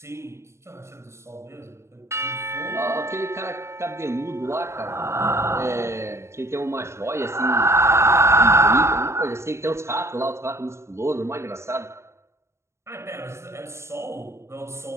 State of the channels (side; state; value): left; late; 0.13 ms